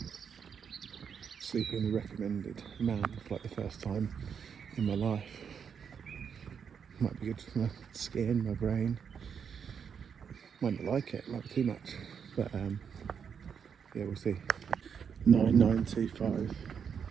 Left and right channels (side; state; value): left; quieter; 7.1 dB